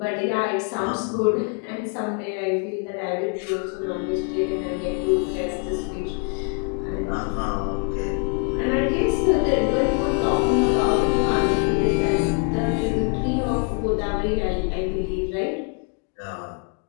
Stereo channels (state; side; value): quieter; right; 37.5 dB